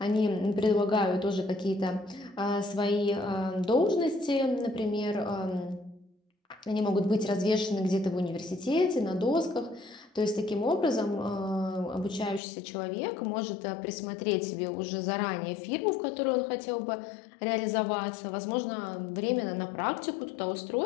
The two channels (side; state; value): right; drops out; at 12.4 s